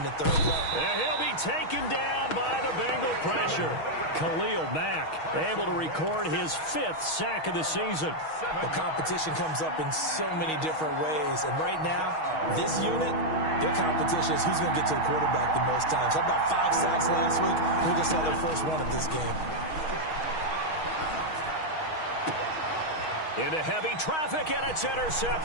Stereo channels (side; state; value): right; late; 6.3 ms